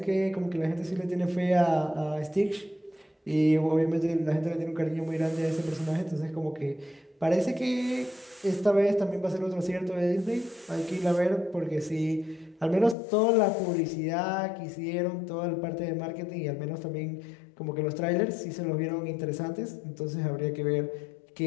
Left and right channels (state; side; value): drops out; right; at 13.0 s